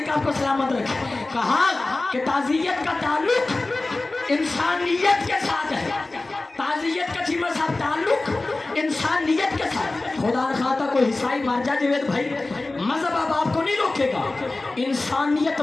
کو سلامت رکھے. کہا کہ تعزیت کا تعلق انسانیت کے ساتھ ہے. تعزیت کا چیمہ صاحب تعلق انسانیت کے ساتھ. خدا نخواستہ کوئی عیسائی مار جائے جوید بھائی، مذہب اب آپ کو نہیں روکے گا، انسانیت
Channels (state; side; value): quieter; right; 3.1 dB